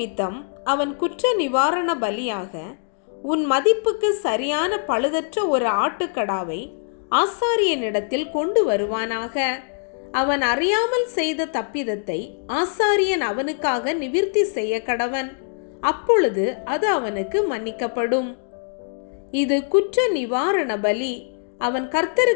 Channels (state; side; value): silent; right; digital silence